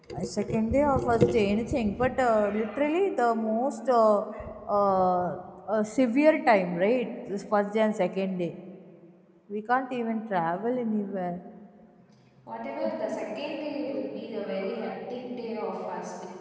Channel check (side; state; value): both; identical; correlation 1.00